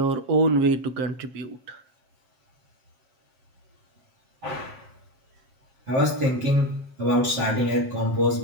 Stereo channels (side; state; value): left; late; 7.7 ms